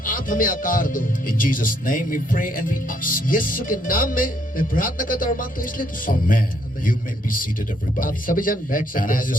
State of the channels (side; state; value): both; normal; correlation 0.71